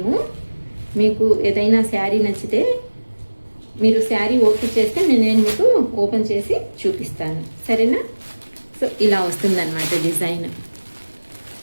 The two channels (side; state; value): both; inverted; correlation -1.00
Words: మీకు ఏదైనా శారీ నచ్చితే మీరు శారీ ఓపెన్ చేస్తే నేను మీకు ఓపెన్ చేసి చూపిస్తాను, సరేనా? సో ఇలా వస్తుందన్నమాట డిజైన్.